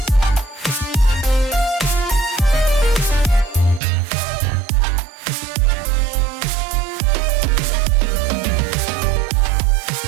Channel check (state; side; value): drops out; left; at 3.8 s